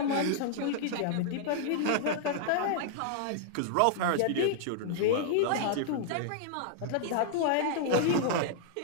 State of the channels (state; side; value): different; both; correlation -0.01